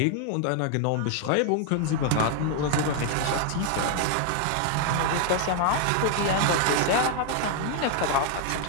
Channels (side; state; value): both; different; correlation 0.00